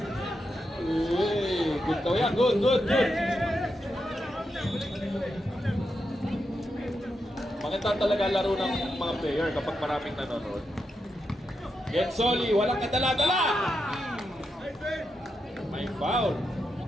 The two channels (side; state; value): both; normal; correlation 0.85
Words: Uy. Good daw yan. Good. Maganda talaga laro ng mga player kapag maraming nanonood. Gensoli, walang kadala-dala! May foul.